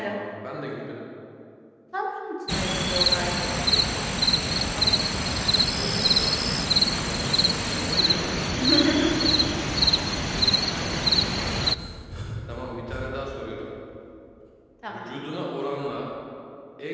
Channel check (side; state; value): both; identical; correlation 1.00